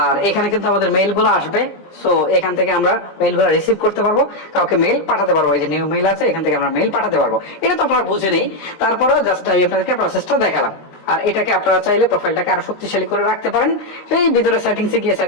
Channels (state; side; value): late; right; 19 ms